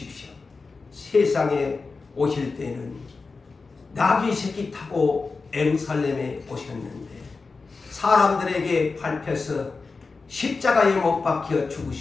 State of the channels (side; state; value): right; quieter; 4.2 dB